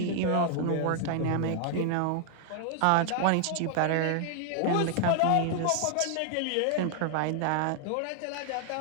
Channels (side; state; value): both; different; correlation 0.00